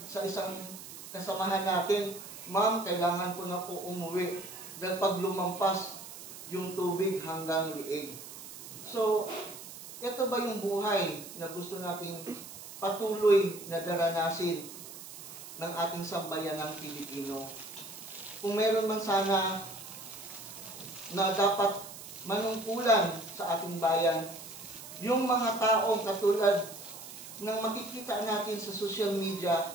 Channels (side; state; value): right; noise; hiss, 13 dB below the sound